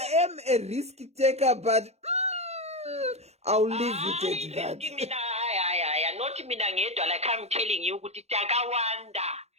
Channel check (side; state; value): left; late; 0.31 ms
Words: am a risk taker, but I'll leave it at that. Not mina ngedwa, like I'm telling you, kuti takawanda